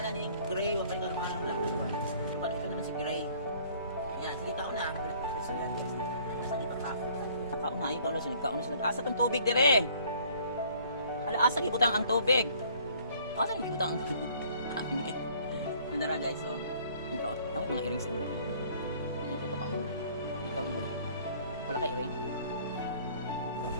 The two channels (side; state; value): both; inverted; correlation -0.56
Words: ni Gray, wapali pangalan ng black. Wapali, ito naman si Gray. Yan, sige kaon na. So yan guys, nasa di pagkaon. Kaon na, ayun kaon na, nagkaon na siya. Asa tong tubig dire? Asa gibutang ang tubig? Asa yung ibutang? Nandara guys, oh. Nagkaon. Tawag mga earrings nila. Hindi ko pakaon. Ikaw yun. Wala ka earring?